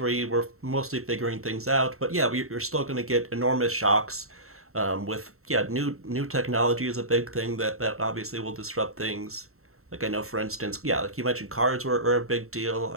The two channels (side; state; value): left; late; 0.63 ms